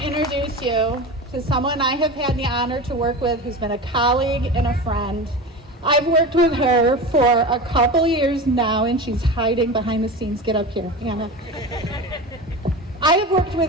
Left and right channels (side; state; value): both; normal; correlation 0.28